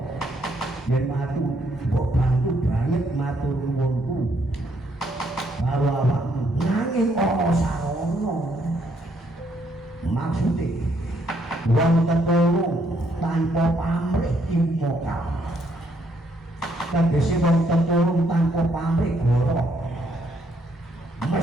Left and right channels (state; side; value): normal; both; correlation 0.72